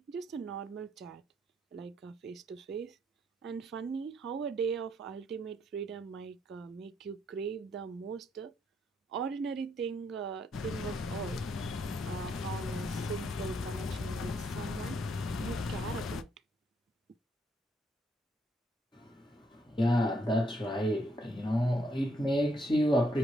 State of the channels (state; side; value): normal; both; correlation 0.74